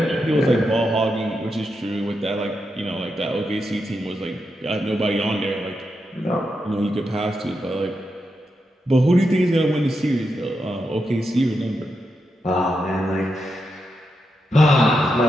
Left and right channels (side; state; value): both; normal; correlation 0.85